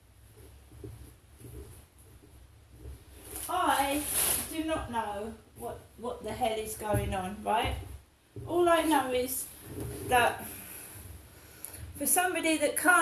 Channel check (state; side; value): identical; both; correlation 1.00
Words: not know what the hell is going on, right? All I know is that for somebody that